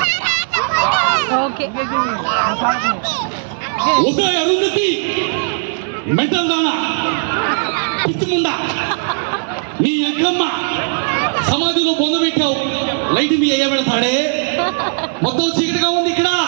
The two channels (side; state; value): left; silent; 57 dB below the other